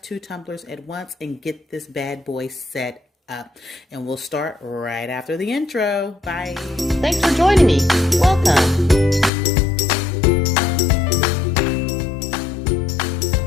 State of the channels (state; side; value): drops out; right; at 9.3 s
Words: tumblers at once and get this bad boy set up. And we'll start right after the intro. Bye. Thanks for joining me. Welcome.